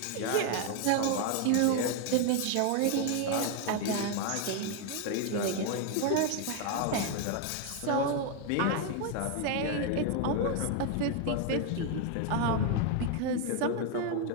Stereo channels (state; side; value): different; both; correlation 0.01